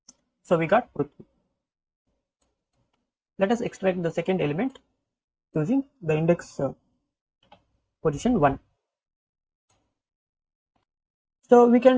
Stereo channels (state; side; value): identical; both; correlation 1.00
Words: So we got Prithvi. Let us extract the second element using the index position 1. So we